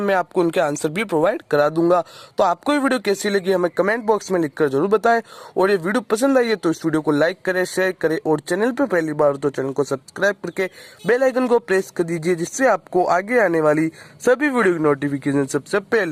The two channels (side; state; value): both; identical; correlation 1.00